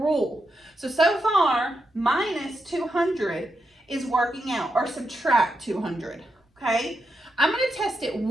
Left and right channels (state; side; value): normal; both; correlation 0.85